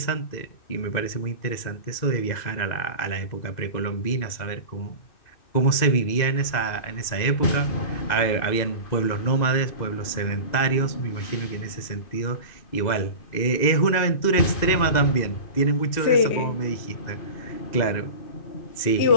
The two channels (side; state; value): right; late; 2.0 ms